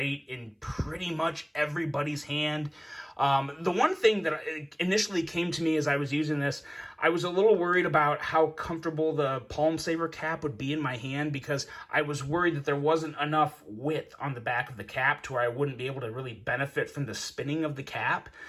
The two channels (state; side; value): identical; both; correlation 1.00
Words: in pretty much everybody's hand. The one thing that initially came to me as I was using this, I was a little worried about how comfortable the palm saver cap would be in my hand, because I was worried that there wasn't enough width on the back of the cap to where I wouldn't be able to really benefit from the spinning of the cap.